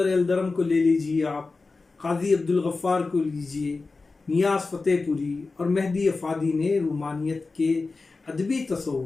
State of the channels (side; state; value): right; quieter; 3.8 dB